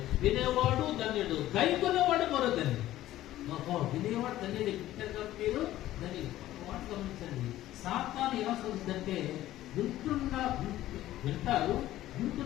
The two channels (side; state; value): right; quieter; 14.4 dB